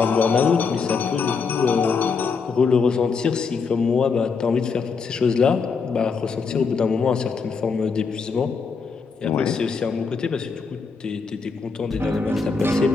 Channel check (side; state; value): right; quieter; 5.1 dB